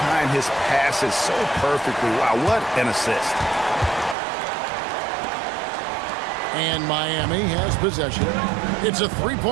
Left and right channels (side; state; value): left; drops out; at 4.2 s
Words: his passes so perfectly. Wow, what an assist. And Miami has possession. It's a